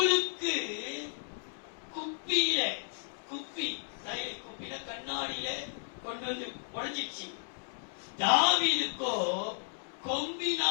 குப்பியில குப்பில கண்ணாடியில கொண்டு வந்து உடைஞ்சிச்சு. தாவீதுக்கோ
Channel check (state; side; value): silent; right; digital silence